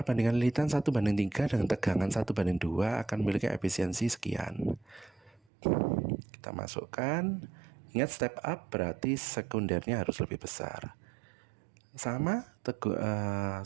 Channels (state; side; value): drops out; left; at 5.4 s